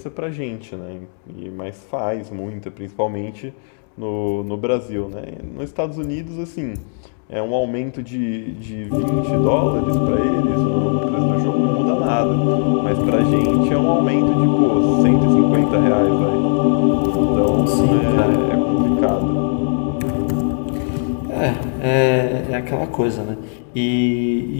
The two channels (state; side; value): silent; right; digital silence